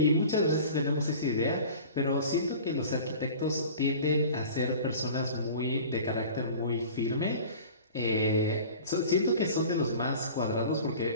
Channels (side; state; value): both; inverted; correlation -0.41